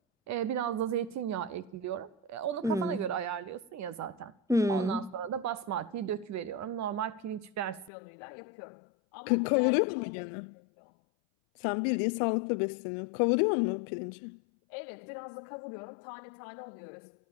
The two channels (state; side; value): drops out; right; at 7.9 s